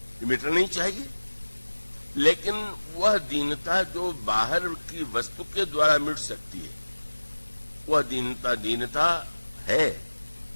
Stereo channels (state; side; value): inverted; both; correlation -1.00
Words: ये मिटना नहीं चाहिए। लेकिन वह दीनता जो बाहर की वस्तु के द्वारा मिट सकती है, वह दीनता है।